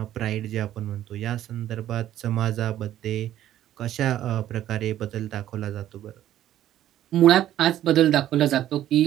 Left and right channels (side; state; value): left; quieter; 12.3 dB